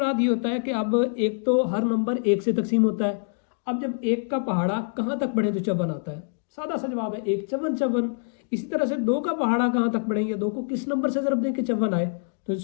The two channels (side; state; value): right; silent; digital silence